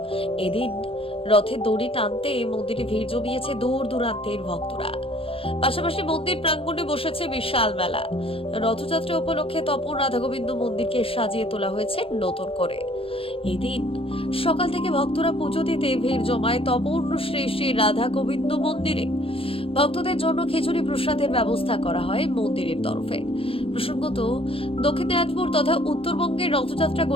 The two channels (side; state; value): right; late; 0.27 ms